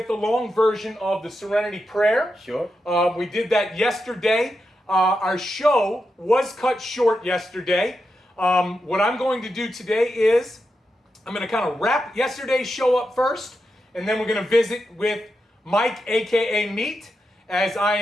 the long version of the Serenity Prayer. Sure. We did that yesterday. Our show was cut short yesterday. What I'm going to do today is I'm going to kind of wrap yesterday's show up first, and then we're going to visit with Mike, a.k.a. Meat, as I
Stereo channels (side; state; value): both; normal; correlation 0.87